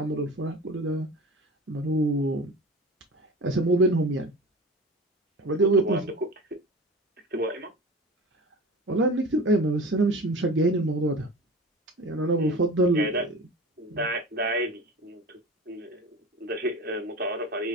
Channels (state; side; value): normal; both; correlation 0.35